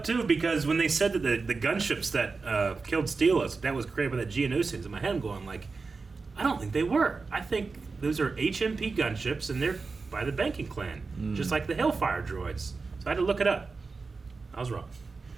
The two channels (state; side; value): quieter; left; 4.3 dB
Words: too, because when they said that the gunships that killed Steelos, that was created by the Geonosians, in my head I'm going like, I don't think they were. I think those are HMP gunships, and they're by the banking clan, just like the Hellfire droids. So I had to look it up. I was wrong.